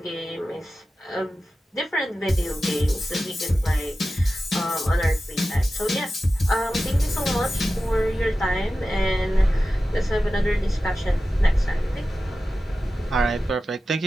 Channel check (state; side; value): normal; both; correlation 0.94